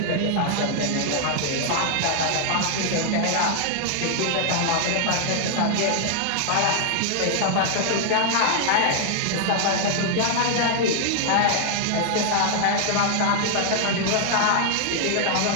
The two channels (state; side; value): different; both; correlation 0.00